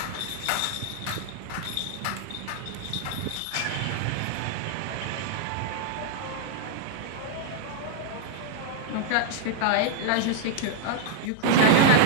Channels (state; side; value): different; both; correlation 0.00